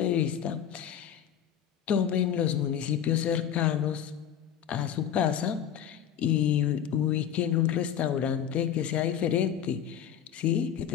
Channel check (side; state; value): right; quieter; 9.3 dB